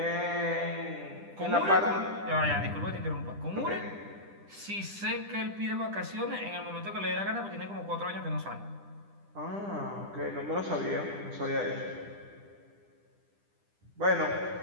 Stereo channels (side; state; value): left; late; 10 ms